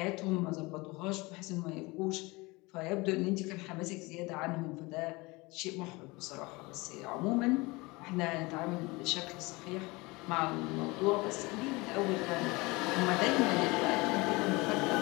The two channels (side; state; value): right; quieter; 24.0 dB